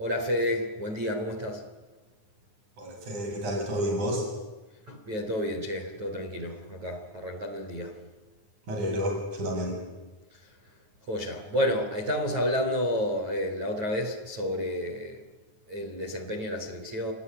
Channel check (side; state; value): left; late; 9.5 ms